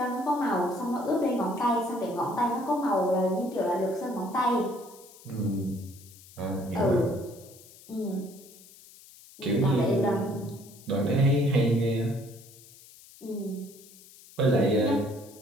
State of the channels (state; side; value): noise; left; hiss, 22 dB below the sound